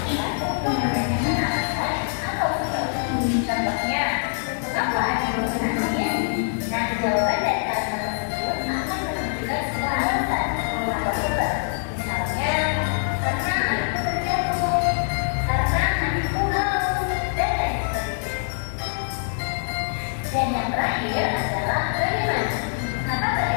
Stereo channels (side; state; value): right; silent; digital silence